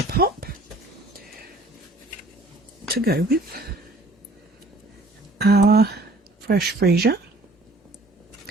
Pop to go with our Fresh Freesia.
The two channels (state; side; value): normal; both; correlation 0.54